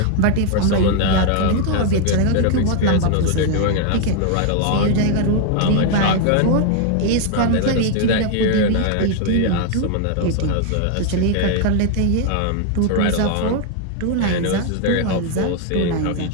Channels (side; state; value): both; different; correlation 0.00